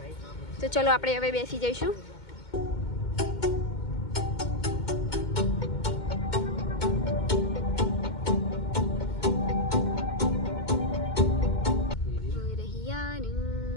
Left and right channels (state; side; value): late; right; 2.2 ms